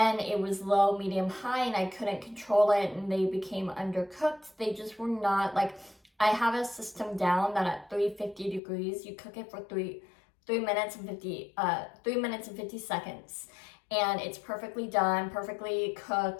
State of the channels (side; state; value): right; drops out; at 8.6 s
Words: it was low, medium, high, and I couldn't control it, and they became undercooked. They just were not, like, I have a system down that at 350 degrees, you cook it for 3 minutes and 50 seconds, and it's perfectly done, perfectly